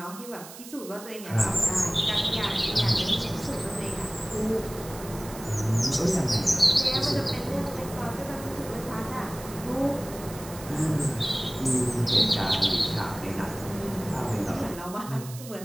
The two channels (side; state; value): right; noise; hiss, 15 dB below the sound